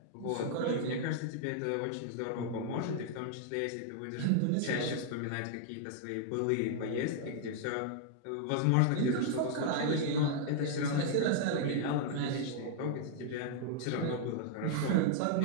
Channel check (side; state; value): both; different; correlation -0.01